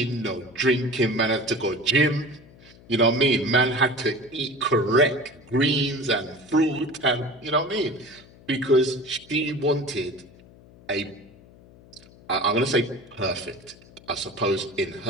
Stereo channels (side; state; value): left; noise; hum, 24 dB below the sound